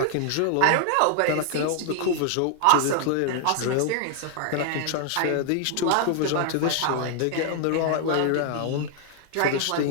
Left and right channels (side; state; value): both; different; correlation 0.00